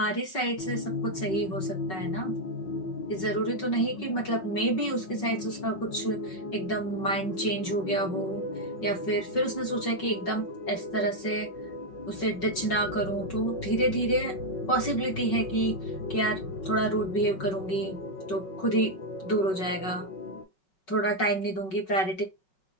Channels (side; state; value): right; late; 5.3 ms